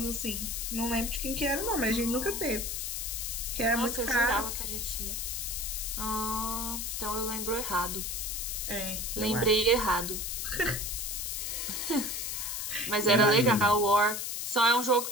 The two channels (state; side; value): noise; left; hiss, 3 dB below the sound